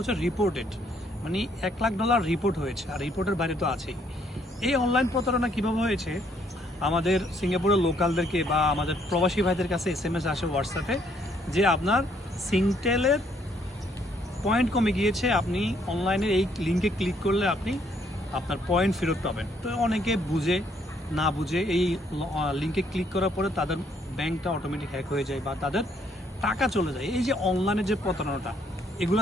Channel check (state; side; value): normal; both; correlation 0.68